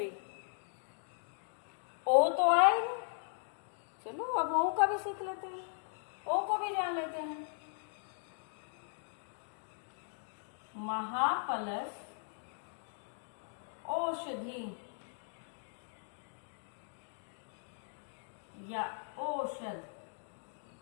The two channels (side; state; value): right; silent; digital silence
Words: ओ तो आए, चलो अब ओ का भी सीख लेते हैं, ओ को भी जान लेते हैं। महा प्लस औषधि या औषध,